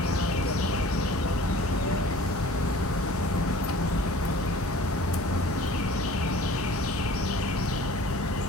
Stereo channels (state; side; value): normal; both; correlation 0.47